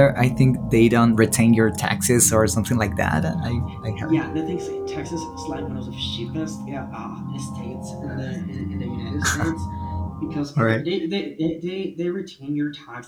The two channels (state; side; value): identical; both; correlation 1.00